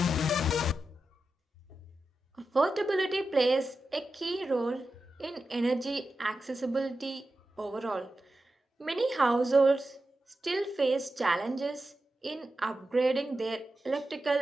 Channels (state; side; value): normal; both; correlation 0.91